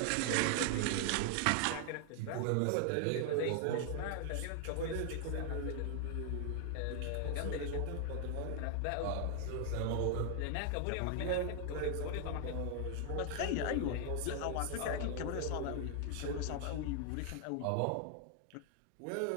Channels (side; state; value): both; different; correlation 0.00